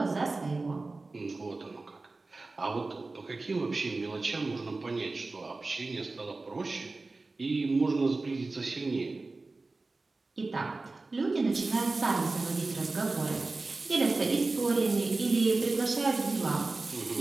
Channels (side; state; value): left; quieter; 3.5 dB